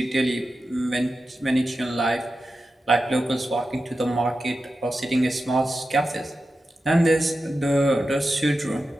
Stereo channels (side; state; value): both; normal; correlation 0.91